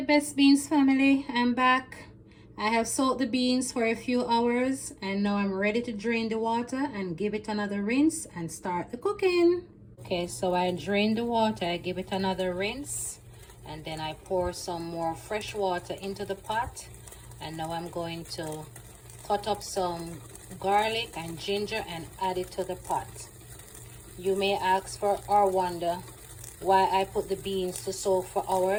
beans family, I'm back. I have soaked the beans for a few hours and now I'm ready to drain the water and give it another rinse and start the cooking. Okay, so I drain the water, I give it another rinse, and then I pour some more fresh water into the pot. And now I'm going to cut up some garlic and ginger and add it to the pot. You may ask for or wonder why I put the beans to soak for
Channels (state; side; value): identical; both; correlation 1.00